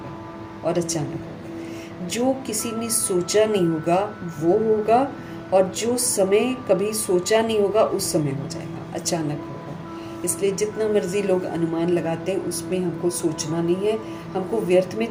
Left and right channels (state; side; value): identical; both; correlation 1.00